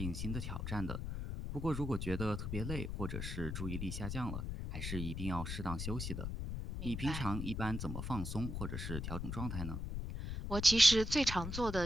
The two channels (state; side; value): noise; left; rumble, 4 dB below the sound